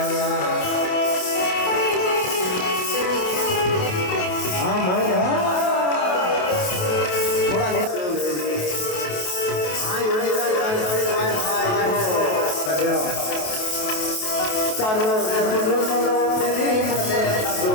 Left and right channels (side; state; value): right; late; 28 ms